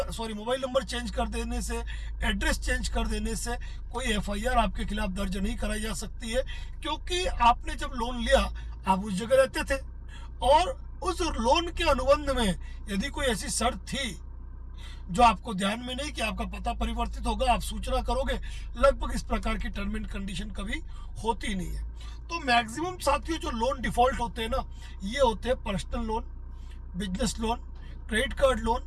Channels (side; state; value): both; identical; correlation 1.00